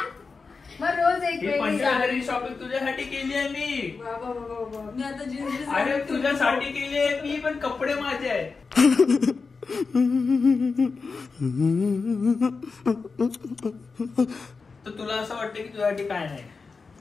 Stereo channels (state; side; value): quieter; right; 4.6 dB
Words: मग रोज एक ही वेगळी 25,000ची शॉपिंग तुझ्यासाठी केली आहे मी. बाबा मी आता जीन्स अरे तुझ्यासाठी केली आहे मी पण कपडे माझे आहेत. तर तुला असं वाटतं की तुझ्यासाठी काय नाही